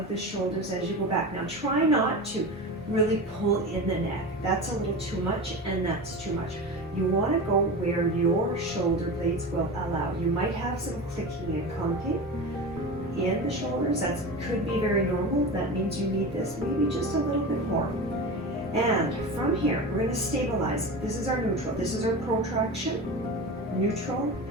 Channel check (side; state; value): both; normal; correlation 0.28